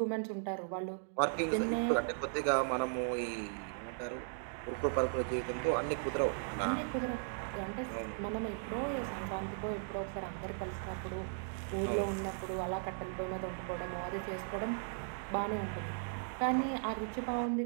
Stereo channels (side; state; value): left; silent; digital silence